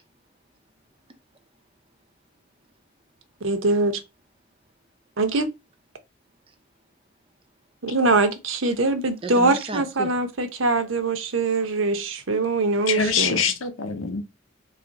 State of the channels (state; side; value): normal; both; correlation -0.15